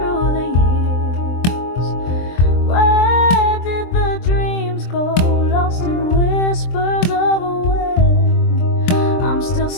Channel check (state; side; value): late; right; 23 ms